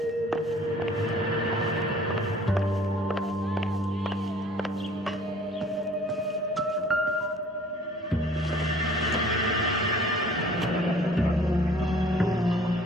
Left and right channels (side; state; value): both; normal; correlation 0.52